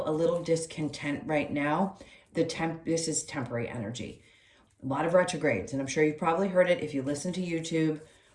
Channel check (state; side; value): identical; both; correlation 1.00